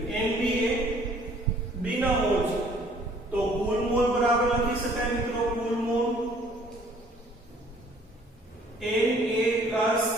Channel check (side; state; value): both; normal; correlation 0.58